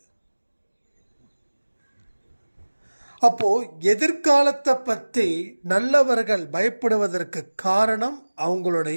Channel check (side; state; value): both; inverted; correlation -1.00